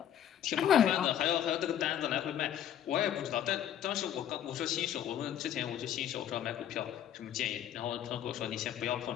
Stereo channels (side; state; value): right; quieter; 10.4 dB